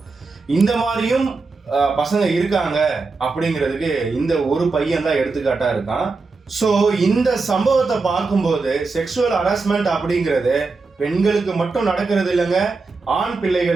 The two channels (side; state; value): left; quieter; 4.1 dB